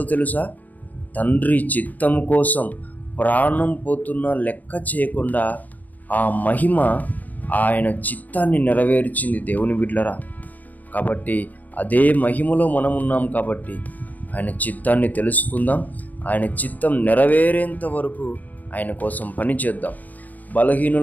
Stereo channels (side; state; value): right; late; 0.081 ms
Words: తెలుసా? తండ్రి చిత్తము కోసం ప్రాణం పోతున్నా లెక్క చేయకుండా ఆ మహిమ ఆయన చిత్తాన్ని నెరవేర్చింది దేవుని బిడ్డలారా. కాబట్టి అదే మహిమలో మనం ఉన్నాం. కాబట్టి ఆయన చిత్తాన్ని తెలుసుకుందాం. ఆయన చిత్తం నెరవేరేంత వరకు ఆయన కోసం పని చేద్దాం.